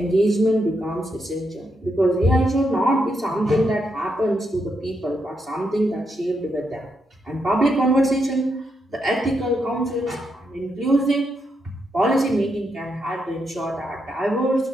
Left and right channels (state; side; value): normal; both; correlation 0.81